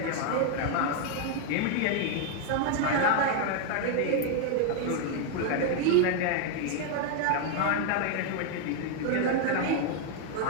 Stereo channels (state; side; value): different; both; correlation 0.00